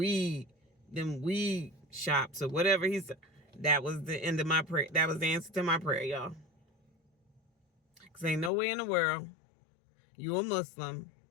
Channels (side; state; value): right; drops out; at 8.5 s